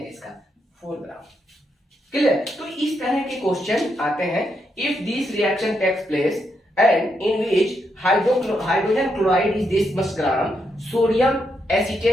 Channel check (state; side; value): normal; both; correlation 0.80